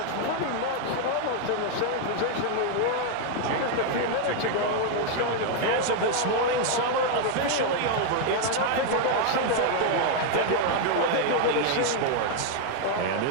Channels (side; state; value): both; different; correlation 0.00